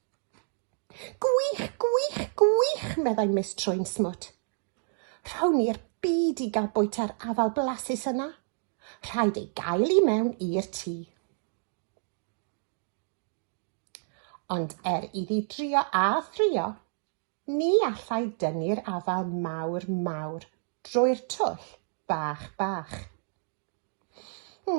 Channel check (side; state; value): left; silent; digital silence